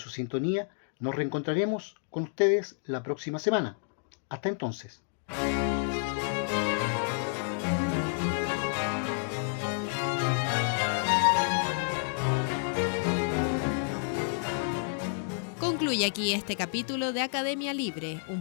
sintonía, nos reencontraremos con ustedes la próxima semana. Hasta entonces. Concluye aquí este capítulo de Academia Libre, un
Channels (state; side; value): silent; right; digital silence